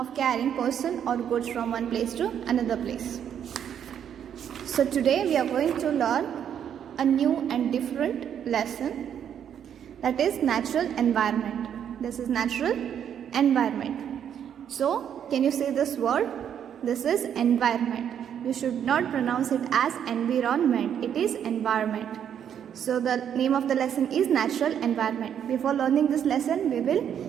carrying person or goods from one place to another place. So today we are going to learn a new and different lesson, that is natural environment. This is natural environment. So can you say this word? This is environment. You should not pronounce it as environment. It is environment. So the name of the lesson is natural environment. Before learning this lesson, we will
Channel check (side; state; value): left; quieter; 9.0 dB